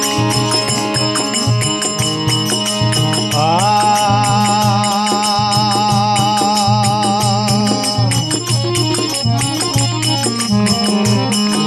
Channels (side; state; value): both; identical; correlation 1.00